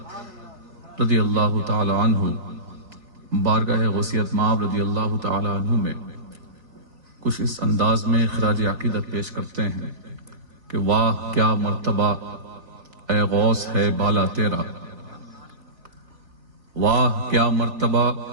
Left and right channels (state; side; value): late; left; 3.4 ms